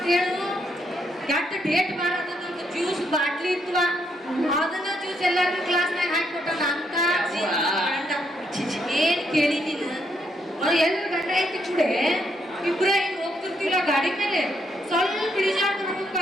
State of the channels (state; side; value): normal; both; correlation 0.76